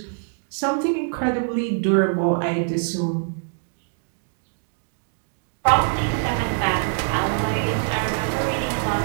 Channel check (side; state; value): left; silent; 56 dB below the other